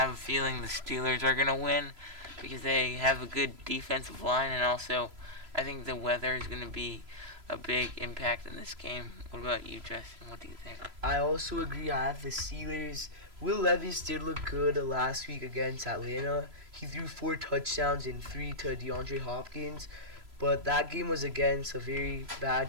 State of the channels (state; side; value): late; left; 3.0 ms